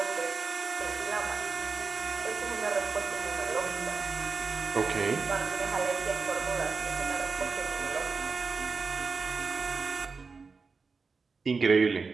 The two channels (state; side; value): quieter; left; 4.7 dB